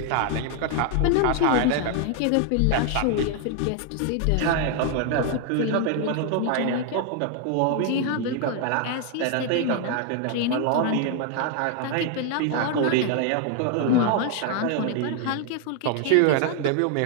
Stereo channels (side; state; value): both; different; correlation 0.00